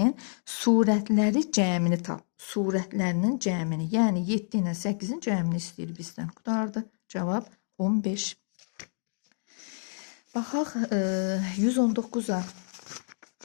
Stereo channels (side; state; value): right; silent; 59 dB below the other